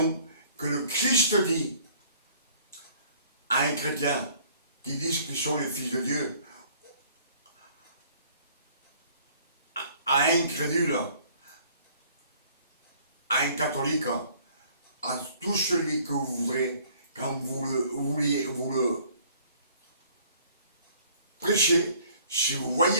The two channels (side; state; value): both; inverted; correlation -0.56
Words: que le Christ dit à un chrétien qui disent qu'ils sont les fils de Dieu, à un incrédule, à un catholique, à tout celui que vous voudrez, quand vous le prêchez, si vous